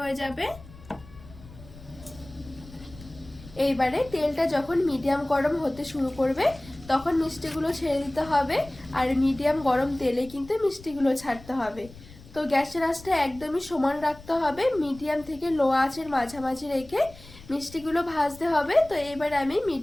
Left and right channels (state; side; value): noise; left; rumble, 20 dB below the sound